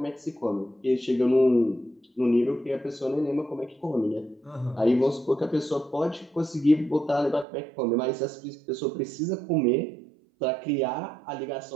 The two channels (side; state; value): left; drops out; at 7.5 s